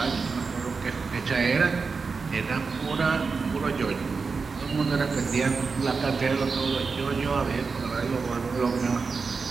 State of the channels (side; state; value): left; quieter; 4.8 dB